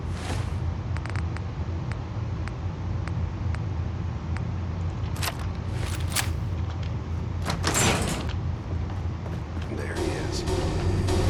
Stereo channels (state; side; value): identical; both; correlation 1.00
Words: There he is.